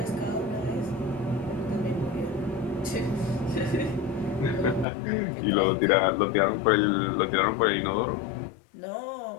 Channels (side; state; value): right; drops out; at 4.9 s